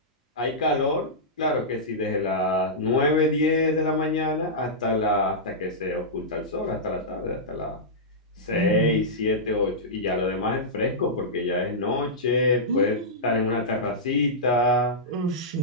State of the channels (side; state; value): both; normal; correlation -0.13